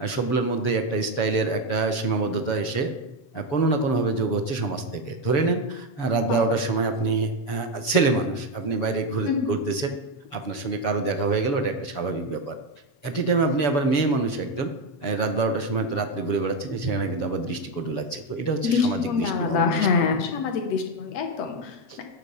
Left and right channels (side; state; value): right; late; 7.0 ms